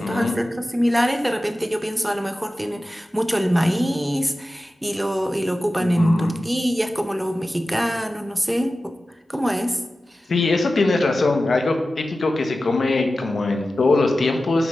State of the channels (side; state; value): both; normal; correlation 0.94